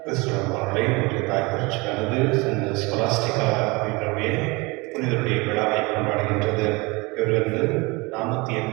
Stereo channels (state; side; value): quieter; left; 25.5 dB